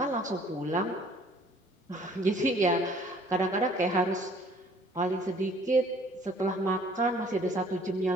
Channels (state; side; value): normal; both; correlation 0.57